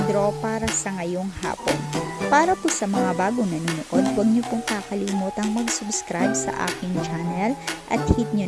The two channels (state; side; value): identical; both; correlation 1.00